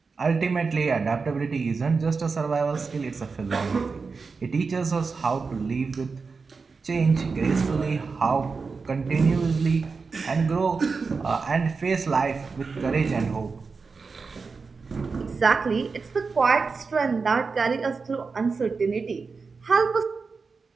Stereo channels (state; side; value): quieter; left; 4.7 dB